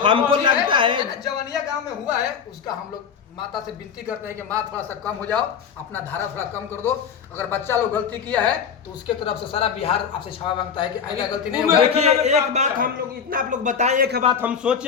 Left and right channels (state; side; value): quieter; right; 7.0 dB